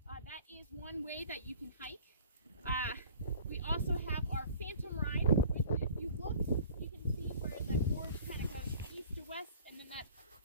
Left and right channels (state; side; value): inverted; both; correlation -0.47